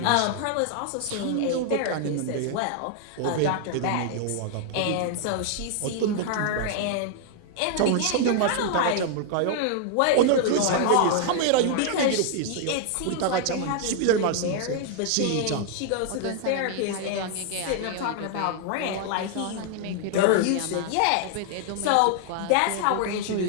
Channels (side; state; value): both; different; correlation 0.00